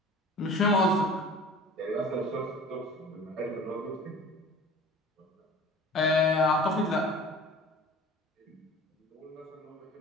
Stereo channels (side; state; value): both; normal; correlation 0.42